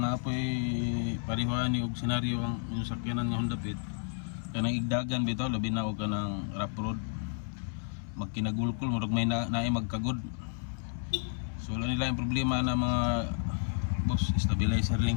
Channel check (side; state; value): right; silent; 57 dB below the other